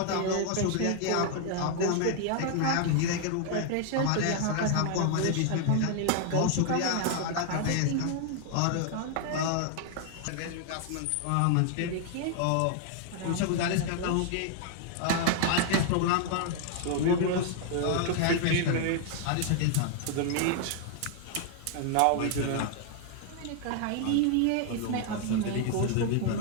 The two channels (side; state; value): both; different; correlation 0.00